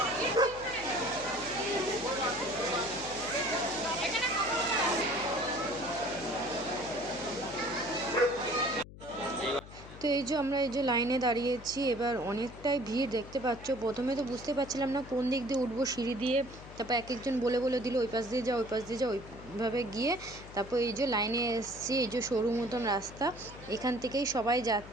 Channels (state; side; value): noise; left; hum, 16 dB below the sound